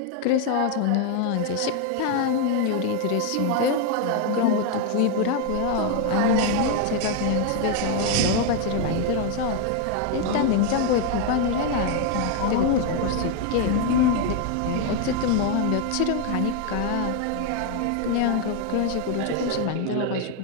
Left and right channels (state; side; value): different; both; correlation 0.01